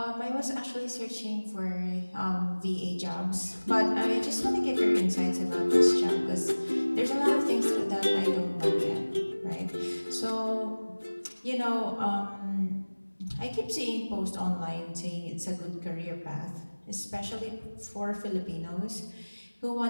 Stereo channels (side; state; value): both; inverted; correlation -1.00